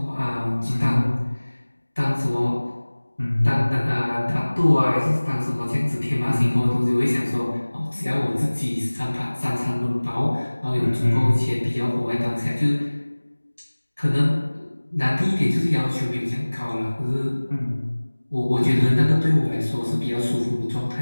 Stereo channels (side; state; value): both; inverted; correlation -1.00